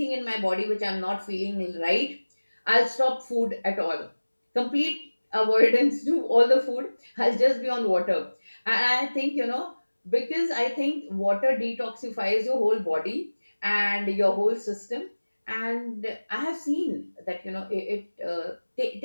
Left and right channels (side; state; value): both; inverted; correlation -1.00